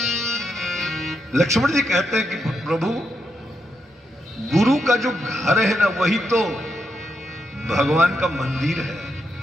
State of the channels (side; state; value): both; normal; correlation 0.82